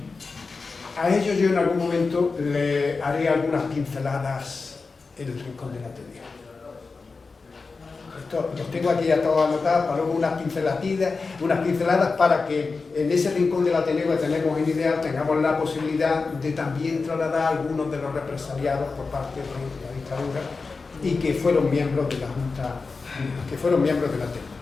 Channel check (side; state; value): right; quieter; 4.3 dB